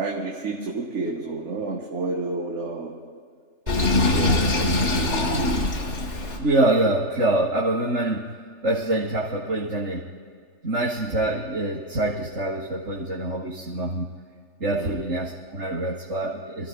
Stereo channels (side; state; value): left; late; 3.3 ms